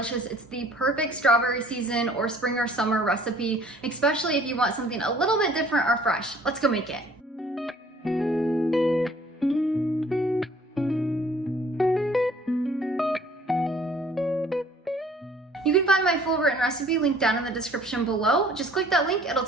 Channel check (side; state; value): both; normal; correlation 0.55